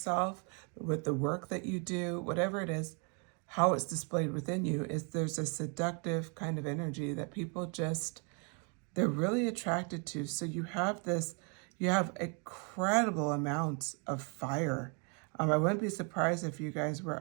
with the work that you do, whatever it is, how it's displayed within you. Is there's a seductive kind of energy that people just, they're really attracted to. So you have incredible amounts of fire. I wouldn't be surprised if you guys were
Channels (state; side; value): quieter; left; 36.2 dB